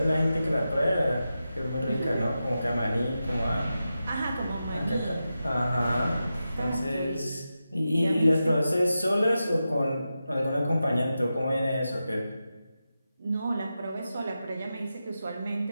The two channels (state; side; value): inverted; both; correlation -0.91